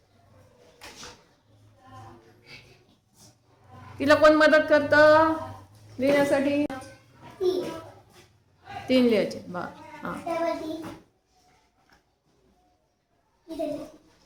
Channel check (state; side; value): identical; both; correlation 1.00